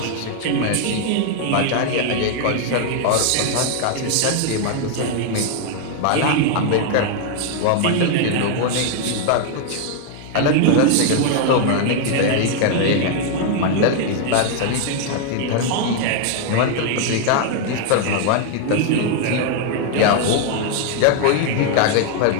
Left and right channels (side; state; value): both; different; correlation 0.00